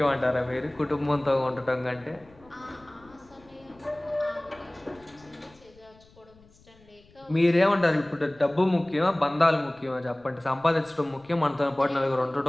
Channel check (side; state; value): left; noise; rumble, 28 dB below the sound